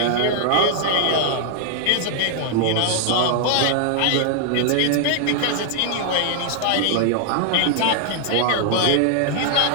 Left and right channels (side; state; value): both; different; correlation 0.00